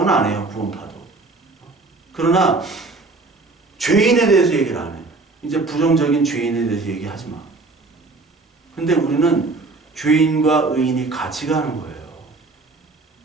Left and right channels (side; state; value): left; quieter; 3.6 dB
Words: 안 해요. 구원파도. 그러나 죄인에 대해서 얘기를 안 해. 이제 부정적인 죄인에 대해서 얘기하지 마. 근데 우리는 죄인과 의인이 같이 가는 거예요.